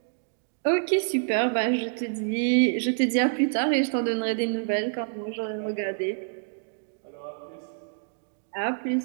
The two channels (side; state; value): left; silent; digital silence